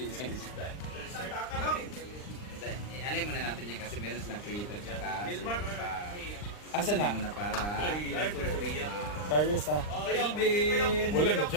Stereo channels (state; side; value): late; right; 39 ms